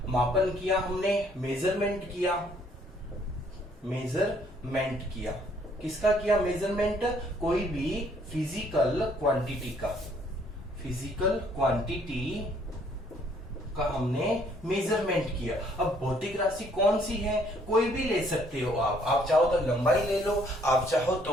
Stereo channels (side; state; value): both; normal; correlation 0.64